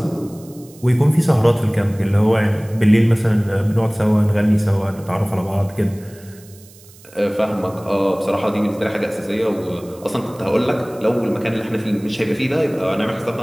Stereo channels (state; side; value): noise; right; hiss, 24 dB below the sound